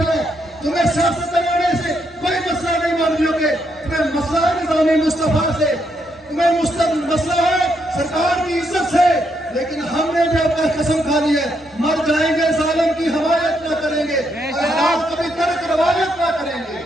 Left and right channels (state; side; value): normal; both; correlation 0.77